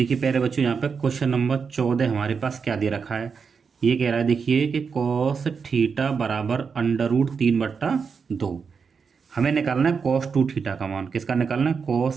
प्यारे बच्चों यहाँ पे क्वेश्चन नंबर 14 हमारे पास क्या दे रखा है। ये कह रहा है देखिए कि कॉस थीटा बराबर √3/2। हमें निकालना है कॉस 2 थीटा का मान। किसका निकालना है,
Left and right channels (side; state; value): left; quieter; 5.7 dB